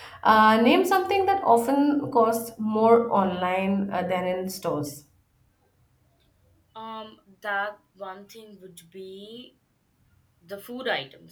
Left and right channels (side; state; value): both; identical; correlation 1.00